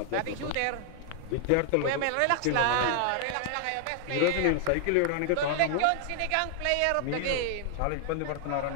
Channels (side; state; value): both; different; correlation 0.00